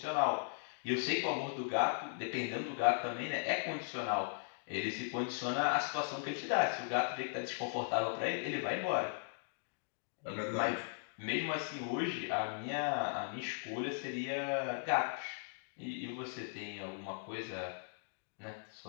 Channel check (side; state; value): right; silent; digital silence